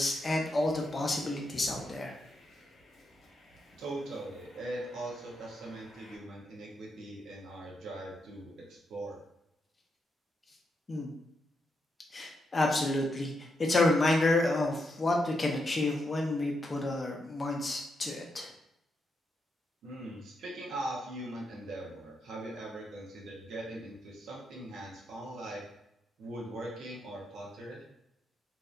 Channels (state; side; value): normal; both; correlation 0.82